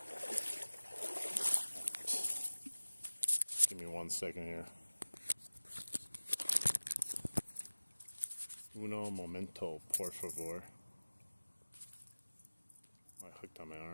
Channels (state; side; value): inverted; both; correlation -1.00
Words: Give me 1 second here. Uno momento, por favor. I hooked on my